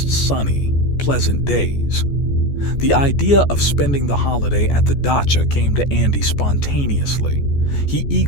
sunny, pleasant days. The idea of spending the holiday at the dacha came to Andy spontaneously. He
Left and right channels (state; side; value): late; right; 14 ms